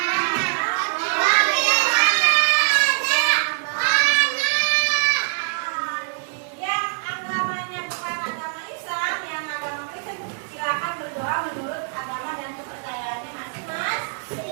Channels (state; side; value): silent; left; 63 dB below the other